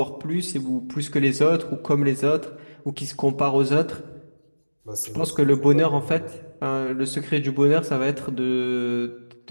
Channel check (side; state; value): both; inverted; correlation -1.00